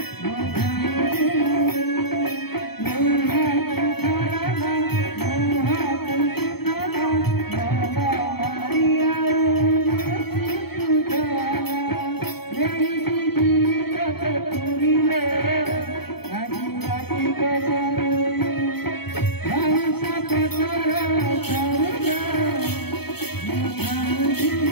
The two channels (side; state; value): right; late; 0.96 ms